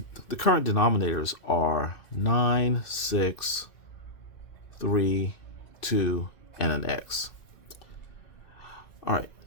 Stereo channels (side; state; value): right; late; 2.6 ms